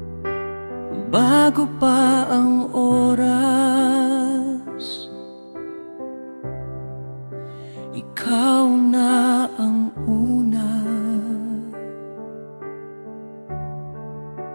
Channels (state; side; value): inverted; both; correlation -1.00